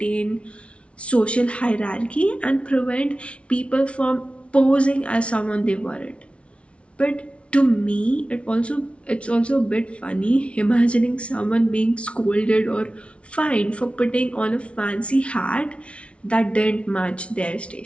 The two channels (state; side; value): late; right; 0.061 ms